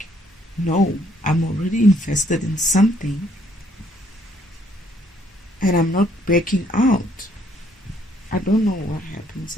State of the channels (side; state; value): both; normal; correlation 0.66